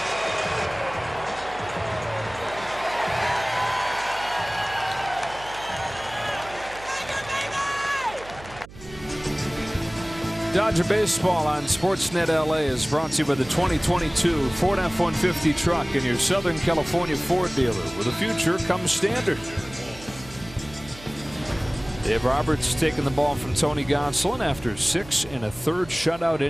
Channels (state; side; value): noise; right; hum, 18 dB below the sound